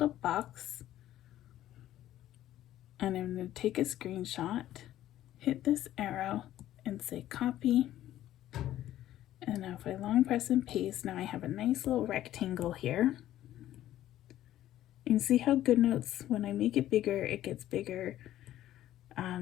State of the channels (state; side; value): quieter; right; 13.2 dB